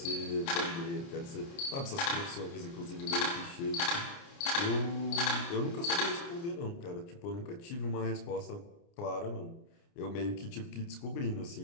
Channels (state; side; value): late; right; 29 ms